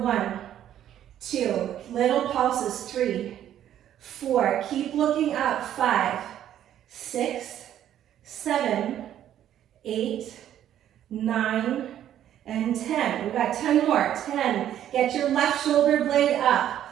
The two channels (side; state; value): left; quieter; 11.1 dB